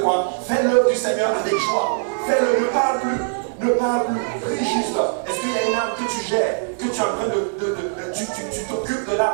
Fais l'œuvre du Seigneur avec joie. Fais-le, ne parle plus. Ne parle plus, prie juste. Est-ce qu'il y a une âme que tu gères, que tu es en train tu t'occupes de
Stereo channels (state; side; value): silent; left; digital silence